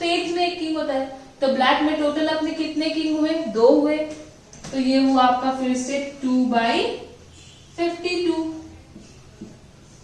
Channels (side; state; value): both; identical; correlation 1.00